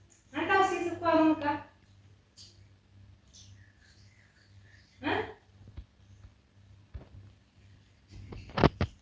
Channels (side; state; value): both; identical; correlation 1.00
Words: አንተው ሲስኳሩ ሙቃ